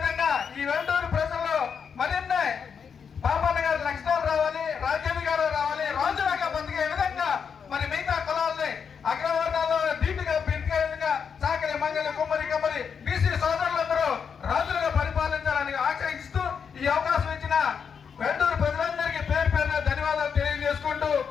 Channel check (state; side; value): quieter; right; 6.6 dB